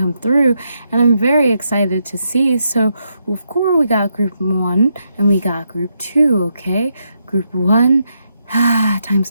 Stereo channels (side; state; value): both; inverted; correlation -0.81